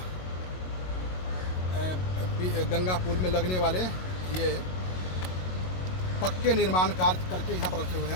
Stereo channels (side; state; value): right; late; 22 ms